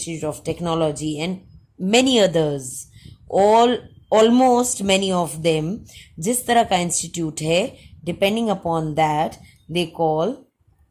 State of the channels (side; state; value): both; identical; correlation 1.00